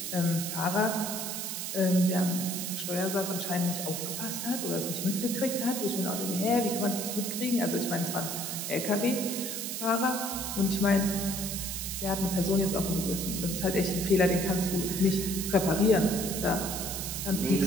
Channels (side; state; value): right; noise; hiss, 4 dB below the sound